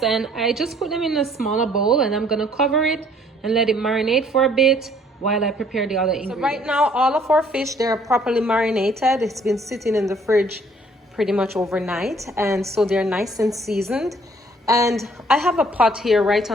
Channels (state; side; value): normal; both; correlation 0.60